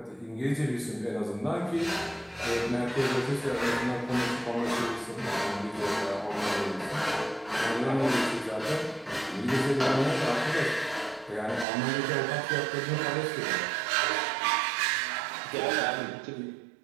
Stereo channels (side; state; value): left; drops out; at 11.7 s